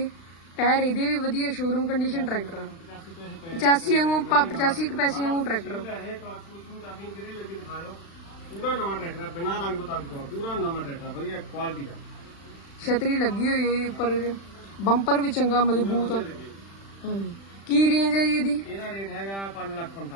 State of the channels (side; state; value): right; late; 36 ms